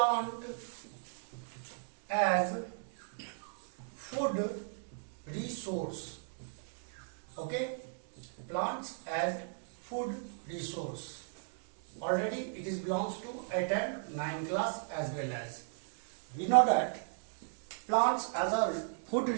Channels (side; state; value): left; silent; digital silence